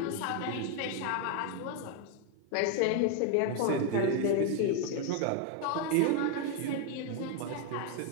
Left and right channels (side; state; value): both; different; correlation 0.01